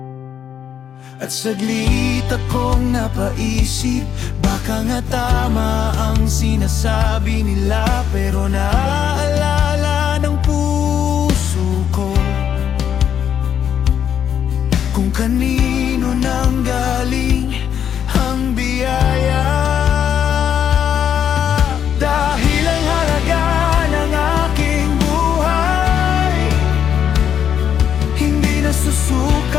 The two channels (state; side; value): quieter; right; 8.8 dB